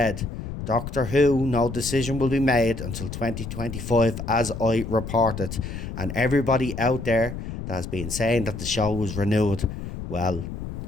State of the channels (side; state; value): left; noise; rumble, 7 dB below the sound